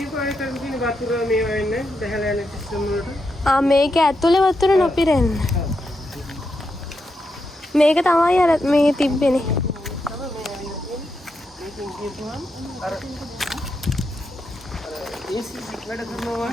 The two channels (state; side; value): normal; both; correlation 0.84